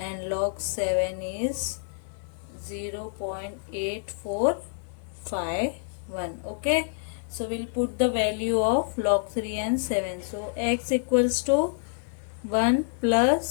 log 7 is 0.8451. Okay, so we'll put the value of log 3 and 7. So x equals to 1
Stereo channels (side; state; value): right; silent; digital silence